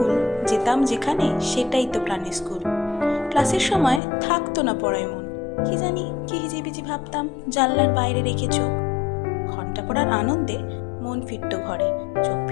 যেতাম যেখানে সেটাই তো প্রাণের স্কুল। ক্লাসের সময় থাকতো না পড়ায় মন, কি জানি কি হিজিবিজি ভাবতাম জানলার বাইরে রেখে চোখ। ঘন্টা পড়ার আনন্দে মন ফিরত ঘরে, চোখ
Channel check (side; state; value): right; drops out; at 4.0 s